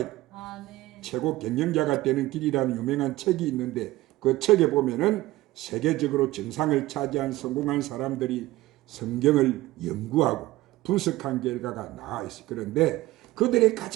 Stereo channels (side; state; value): left; quieter; 17.6 dB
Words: 돼요. 최고 경영자가 되는 길이라는 유명한 책이 있는데 그 책에 보면은 세계적으로 정상을 차지한 성공한 사람들이 성경을 연구하고 분석한 결과가 나와 있어요. 그런데 그들의